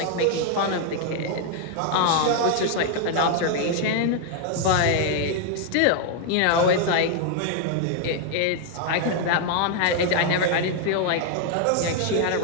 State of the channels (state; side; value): different; both; correlation 0.00